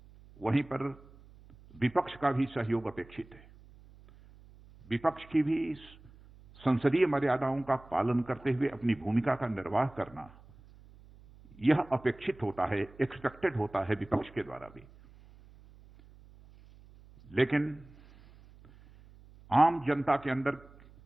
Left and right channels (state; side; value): noise; right; hum, 23 dB below the sound